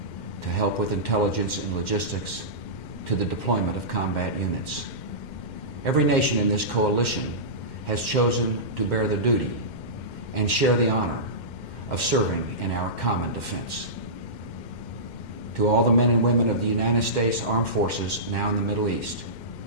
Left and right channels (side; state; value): right; late; 2.1 ms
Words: to help with intelligence and logistics to the deployment of combat units. Every nation in this coalition has chosen to bear the duty and share the honor of serving in our common defense. To all the men and women of the United States Armed Forces now in the Middle East,